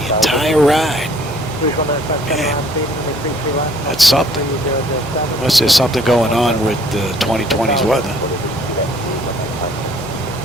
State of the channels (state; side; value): noise; left; hum, 19 dB below the sound